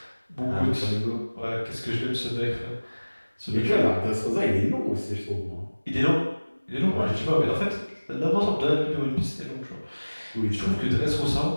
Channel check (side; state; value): both; inverted; correlation -1.00